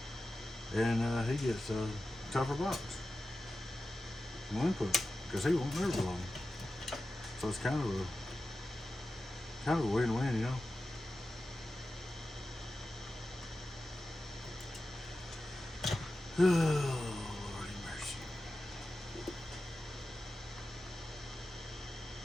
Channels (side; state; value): both; normal; correlation 0.93